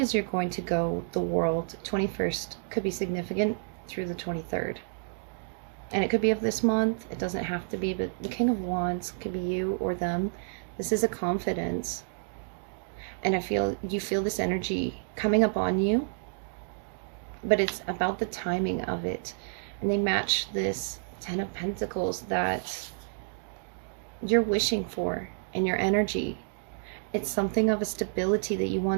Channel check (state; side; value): silent; left; digital silence